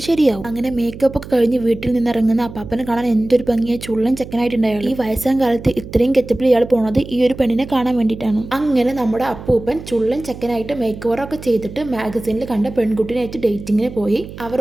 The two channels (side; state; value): right; noise; hum, 13 dB below the sound